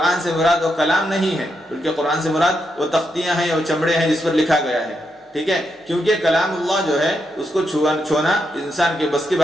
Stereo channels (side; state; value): both; normal; correlation 0.82